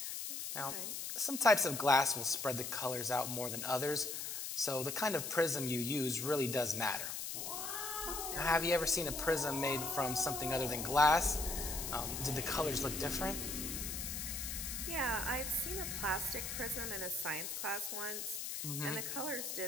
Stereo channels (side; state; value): left; noise; hiss, 4 dB below the sound